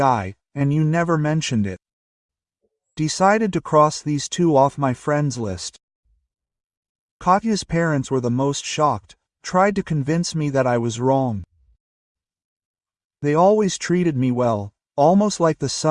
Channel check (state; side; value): identical; both; correlation 1.00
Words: and you never mentioned it. Decided to cross these two off my friends list. Katya's parents were the most shocked, tried to convince me that I was wrong. They always treated me well, almost like the